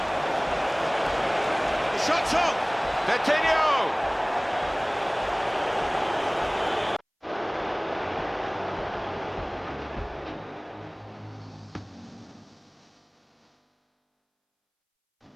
The shot's on! Coutinho!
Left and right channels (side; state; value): both; identical; correlation 1.00